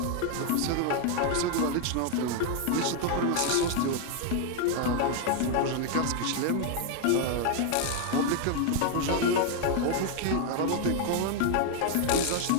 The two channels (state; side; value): different; both; correlation 0.01